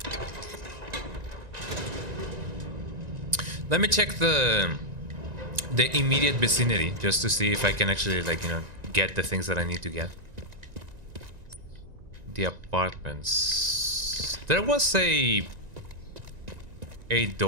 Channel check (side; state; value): left; late; 1.9 ms